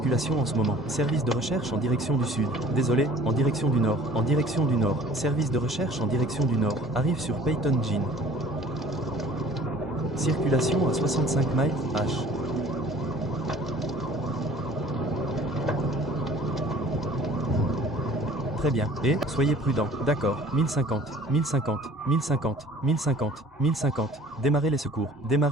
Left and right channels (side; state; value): both; normal; correlation 0.50